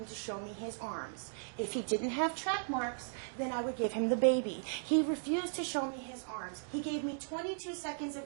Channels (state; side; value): silent; left; digital silence